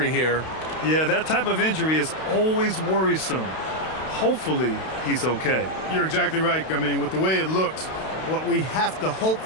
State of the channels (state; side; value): late; right; 32 ms